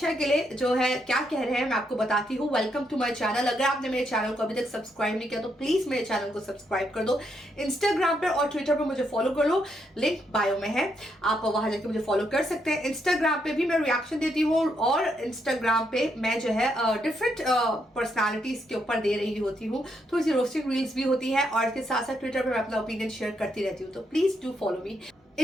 के लिए जो है क्या कह रहे हैं मैं आपको बताती हूँ। Welcome to my channel. अगर आपने मेरे चैनल को अभी तक सब्सक्राइब नहीं किया तो प्लीज मेरे चैनल को सब्सक्राइब कर दो। इंस्टाग्राम पर और ट्विटर पर मुझे फॉलो कर लो, लिंक बायो में है, आप वहां जाके मुझे फॉलो कर सकते हैं। इंस्टाग्राम पे भी मैं रिएक्शन देती हूँ और इंस्टाग्राम पे मैं जो है डिफरेंट पर्सनालिटीज के ऊपर दे रही होती हूँ, थोड़ी सी रोस्टिंग रील्स भी होती है और इसके साथ साथ ट्विटर पर मैं अपना ओपिनियन शेयर करती रहती हूँ। तो please do follow me.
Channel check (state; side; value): normal; both; correlation 0.78